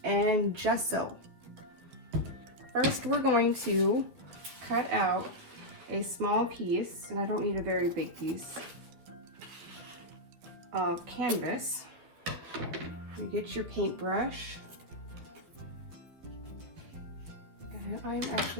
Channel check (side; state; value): left; late; 12 ms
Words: and gesso. First, we're going to cut out a small piece, and I don't need a very big piece, of canvas. You get your paintbrush, and I'm